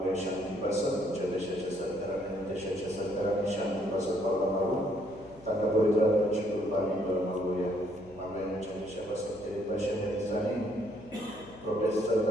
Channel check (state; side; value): noise; left; hum, 21 dB below the sound